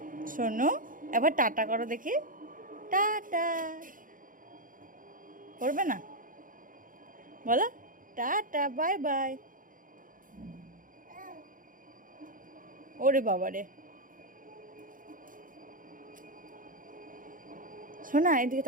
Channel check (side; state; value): left; late; 0.39 ms